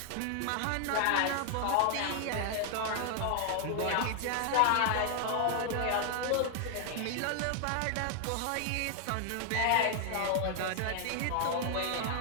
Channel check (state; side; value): different; both; correlation 0.00